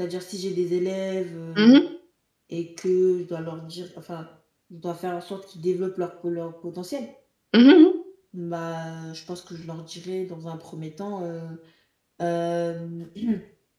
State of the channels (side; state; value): both; identical; correlation 1.00